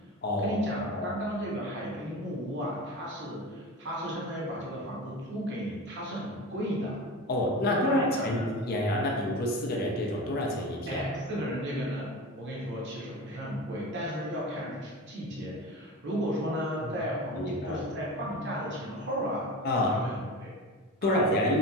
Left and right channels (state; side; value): normal; both; correlation 0.30